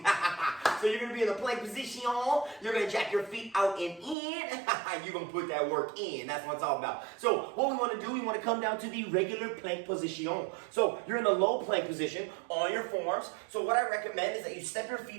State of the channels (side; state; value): left; drops out; at 4.2 s